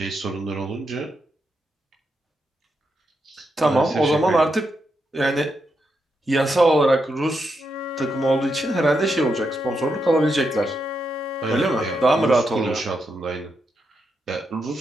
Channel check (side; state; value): both; normal; correlation 0.83